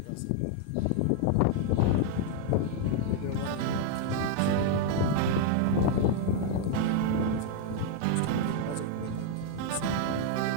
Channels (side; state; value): both; different; correlation 0.00